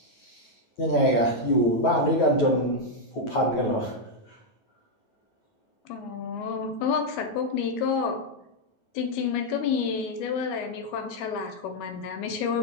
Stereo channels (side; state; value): right; late; 9.2 ms